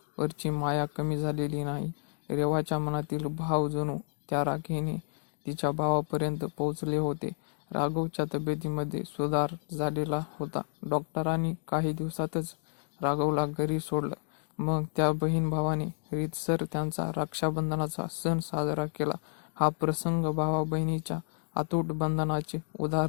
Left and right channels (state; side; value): silent; right; digital silence